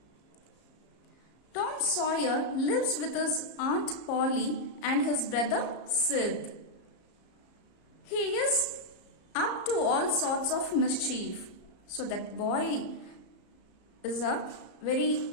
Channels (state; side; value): late; right; 34 ms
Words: Tom Sawyer lives with his Aunt Polly and his brother Sid. He is up to all sorts of mischief. So that boy is a very